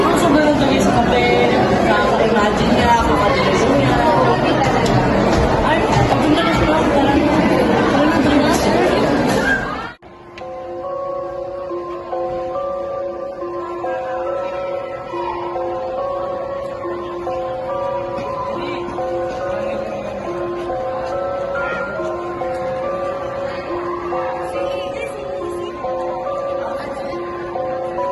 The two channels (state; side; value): identical; both; correlation 1.00